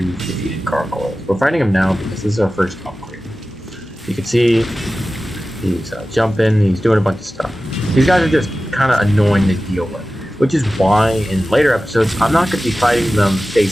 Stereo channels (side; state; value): both; normal; correlation 0.95